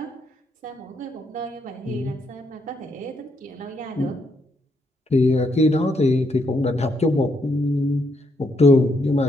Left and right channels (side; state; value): both; normal; correlation 0.76